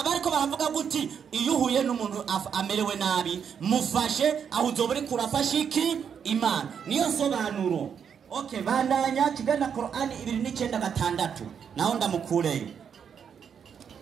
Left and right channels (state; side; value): quieter; left; 7.5 dB